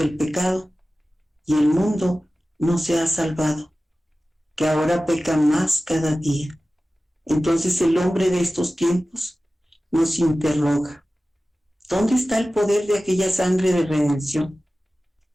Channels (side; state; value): both; normal; correlation 0.96